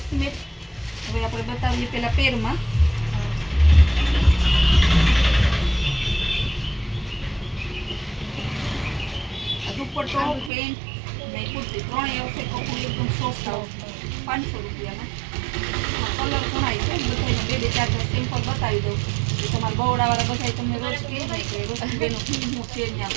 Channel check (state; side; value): drops out; left; at 10.5 s